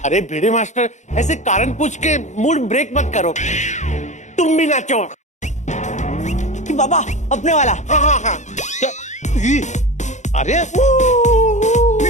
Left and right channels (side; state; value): right; late; 0.34 ms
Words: अरे भिड़े मास्टर, ऐसे कारण पूछ के मूड ब्रेक मत करो, तुम भी नाचो। कि बाबा अपने वाला। हाँ। अरे